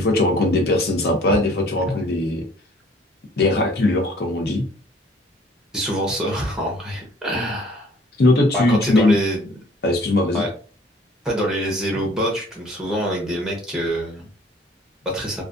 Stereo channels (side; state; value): both; normal; correlation 0.55